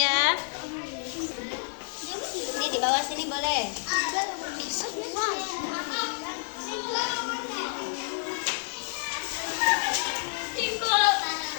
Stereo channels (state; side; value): silent; right; digital silence